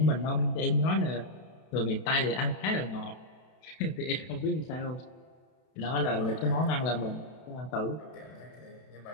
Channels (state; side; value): late; right; 32 ms